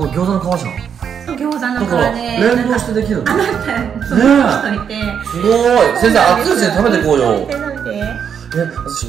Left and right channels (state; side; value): quieter; left; 7.6 dB